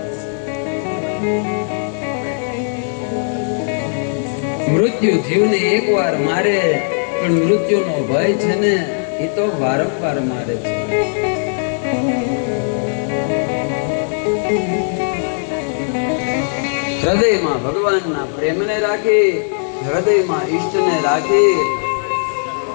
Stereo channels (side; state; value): right; silent; 63 dB below the other